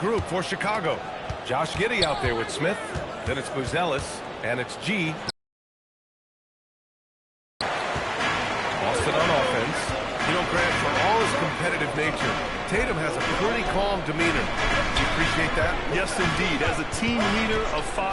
for Chicago. Josh Giddey out there with Smith. Then it's Buzelis. And it's G. Boston on offense. You know, Grant, for all his competitive nature, Tatum has a pretty calm demeanor. Do you appreciate that? Yes, indeed. As a team leader, a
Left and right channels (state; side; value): identical; both; correlation 1.00